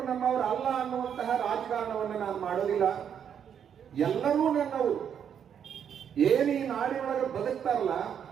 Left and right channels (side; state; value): left; quieter; 8.3 dB